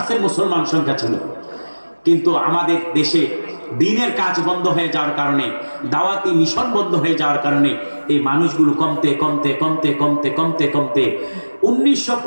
মুসলমান সংখ্যা ছিল। কিন্তু আমাদের দেশে দিনের কাজ বন্ধ হয়ে যাওয়ার কারণে, দাওয়াতি মিশন বন্ধ হয়ে যাওয়ার কারণে এই মানুষগুলো কমতে কমতে কমতে কমতে কমতে কমতে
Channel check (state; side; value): inverted; both; correlation -1.00